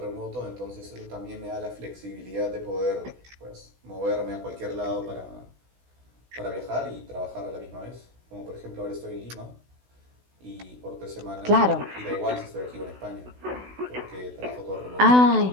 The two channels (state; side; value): late; left; 16 ms